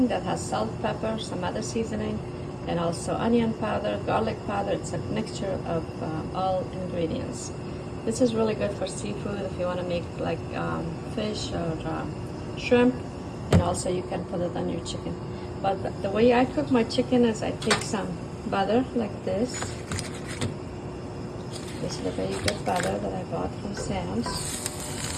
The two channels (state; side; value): identical; both; correlation 1.00